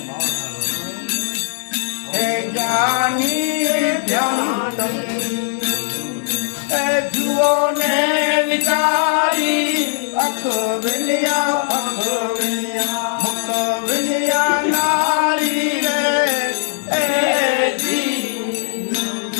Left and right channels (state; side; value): silent; right; digital silence